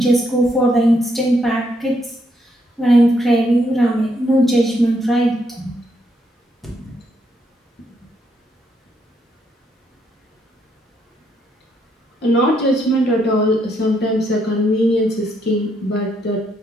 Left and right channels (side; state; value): both; normal; correlation 0.75